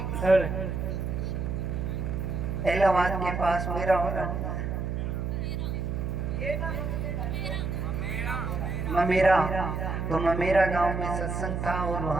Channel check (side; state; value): right; noise; hum, 2 dB below the sound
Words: इलाहाबाद के पास ममेरा तो ममेरा गांव में सत्संग था और